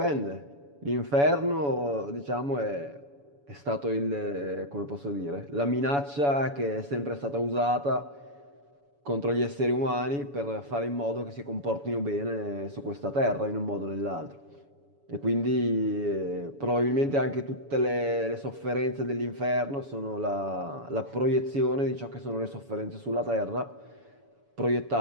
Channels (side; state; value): left; late; 7.1 ms